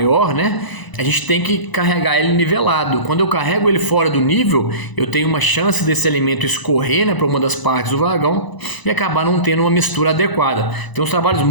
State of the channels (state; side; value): late; right; 1.0 ms